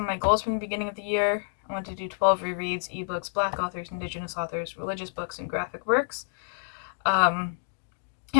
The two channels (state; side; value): silent; right; digital silence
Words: of my goals from the beginning of the year. I wanted to do 12 rereads, ebooks, Black authors, Indigenous authors, religious books, and graphic works.